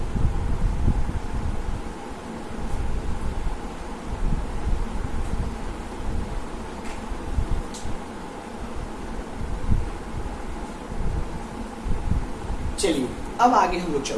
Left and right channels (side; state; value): both; identical; correlation 1.00